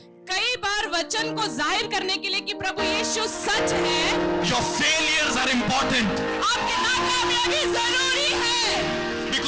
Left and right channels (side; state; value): both; identical; correlation 1.00